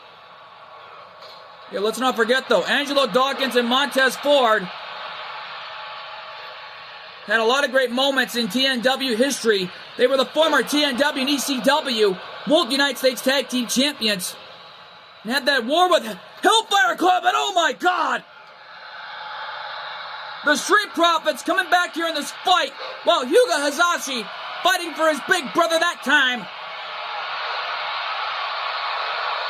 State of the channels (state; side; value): identical; both; correlation 1.00